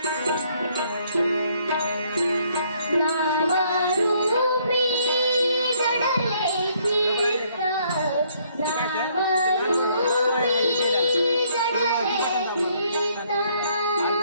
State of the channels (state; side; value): inverted; both; correlation -0.67